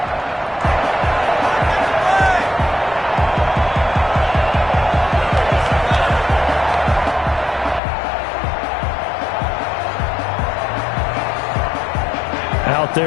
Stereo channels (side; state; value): right; drops out; at 7.8 s